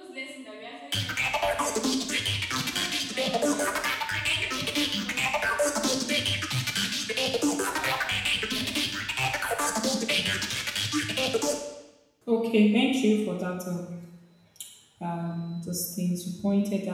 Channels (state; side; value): identical; both; correlation 1.00